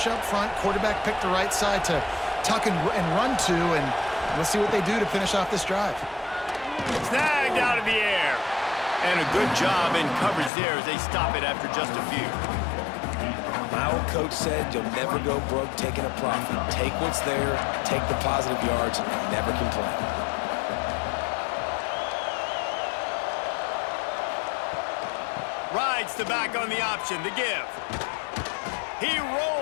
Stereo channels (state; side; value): drops out; right; at 10.5 s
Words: up front. Quarterback picked the right side to tuck and run to, and let's see what they do to finish off this drive. Snagged out of the air. And a good job in coverage there as they stop it after just a few. My old coach said you'll never go broke taking a profit. Take what's there, take the positive yards, and never complain. Rides the back on the option, the give. He